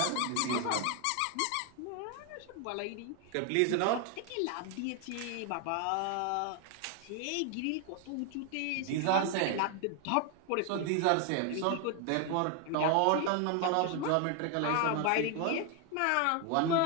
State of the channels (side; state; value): both; different; correlation 0.01